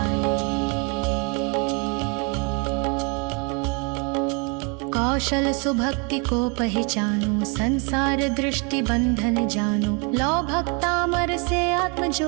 कौशल सुभक्ति को पहचानो, संसार दृष्टि बंधन जानो, लो भक्तामर से आत्म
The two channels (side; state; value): left; quieter; 33.6 dB